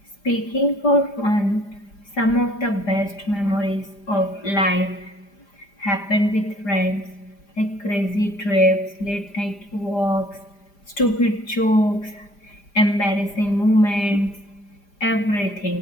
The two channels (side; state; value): right; late; 5.0 ms